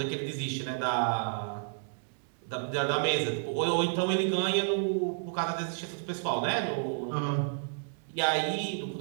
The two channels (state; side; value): silent; left; digital silence